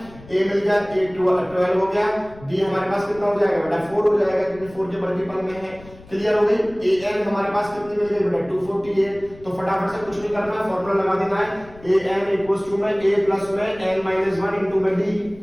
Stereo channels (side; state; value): left; noise; rumble, 21 dB below the sound